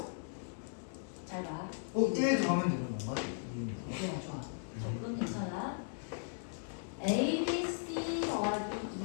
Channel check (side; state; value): right; silent; digital silence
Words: 잘 봐. 1 더하면 되는 건가? 좋아. 그건 괜찮아. A, B, C 더하기